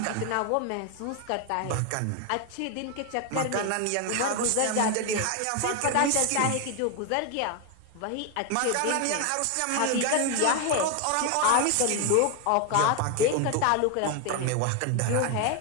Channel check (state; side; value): different; both; correlation 0.01